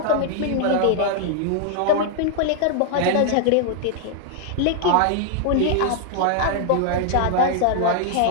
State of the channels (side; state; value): both; different; correlation 0.00